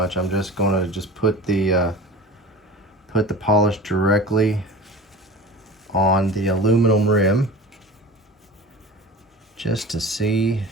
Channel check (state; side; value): normal; both; correlation 0.35